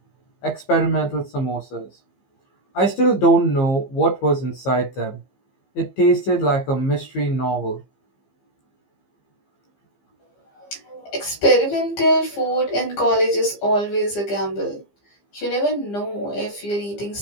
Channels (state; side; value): late; right; 15 ms